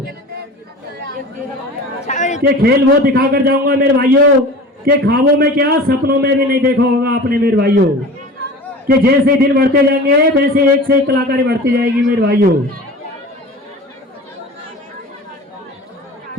ये खेल वो दिखाकर जाऊंगा मेरे भाइयों कि ख्वाबों में क्या सपनों में भी नहीं देखा होगा आपने मेरे भाइयों, कि जैसे दिन बढ़ते जाएंगे वैसे एक से एक कलाकारी बढ़ती जाएगी मेरे भाइयों।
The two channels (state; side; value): normal; both; correlation 0.37